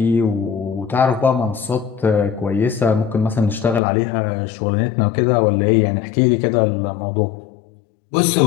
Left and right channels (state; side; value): drops out; right; at 3.8 s